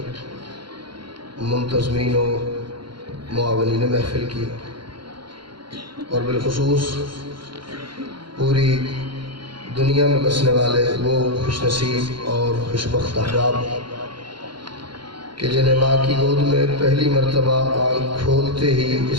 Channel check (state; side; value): late; left; 0.73 ms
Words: منتظمین و معاونین محفل کی، اور بالخصوص پوری دنیا میں بسنے والے وہ خوش نصیب اور خوشبخت احباب کہ جنہیں ماں کی گود میں پہلی مرتبہ آنکھ کھولتے ہی